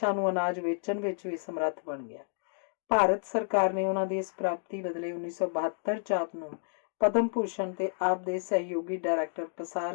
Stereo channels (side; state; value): right; silent; digital silence